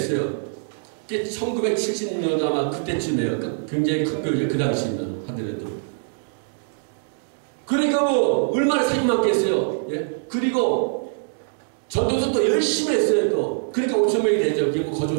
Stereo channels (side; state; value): left; silent; digital silence